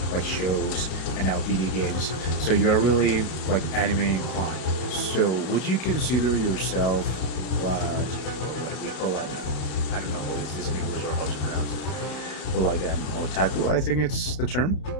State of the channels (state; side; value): late; right; 32 ms